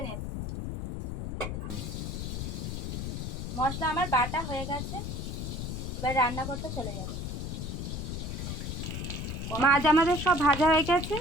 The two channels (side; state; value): left; noise; rumble, 4 dB below the sound